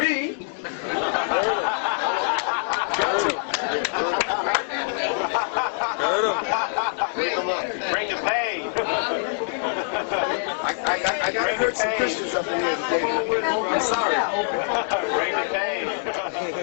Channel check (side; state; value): right; silent; digital silence